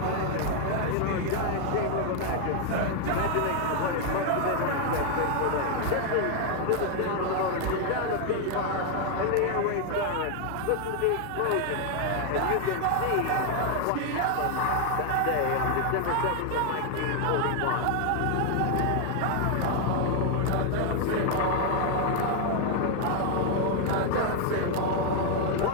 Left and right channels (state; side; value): different; both; correlation 0.00